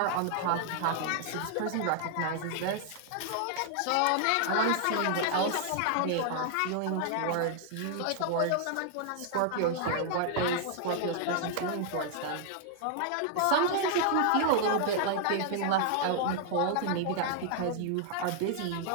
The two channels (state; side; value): different; both; correlation 0.00